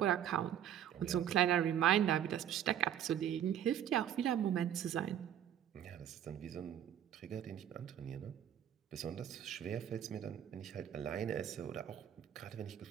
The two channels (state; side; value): quieter; left; 10.2 dB